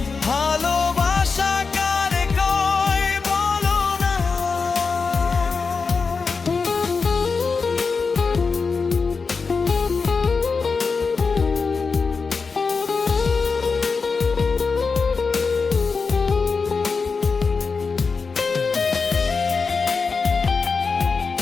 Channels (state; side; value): quieter; right; 4.8 dB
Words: ভালোবাসা কারে কয় বলো না।